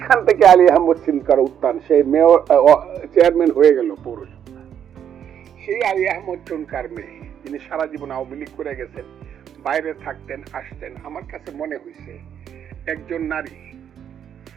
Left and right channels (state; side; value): quieter; left; 9.0 dB